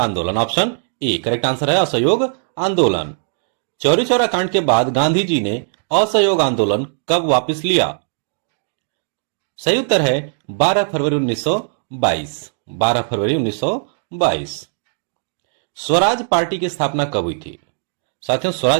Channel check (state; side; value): silent; left; digital silence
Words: ऑप्शन ए करेक्ट आंसर है असहयोग आंदोलन। चौरी चौरा कांड के बाद गांधी जी ने असहयोग आंदोलन कब वापस लिया? सही उत्तर है 12 फरवरी 1922। 12 फरवरी 1922। स्वराज पार्टी की स्थापना कब हुई थी? साथियों,